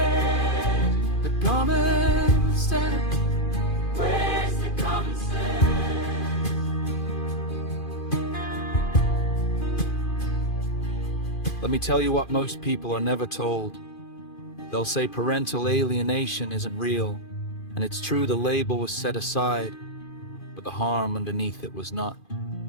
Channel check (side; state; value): right; late; 2.5 ms